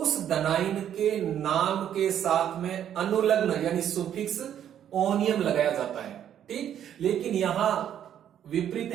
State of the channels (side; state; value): left; quieter; 10.0 dB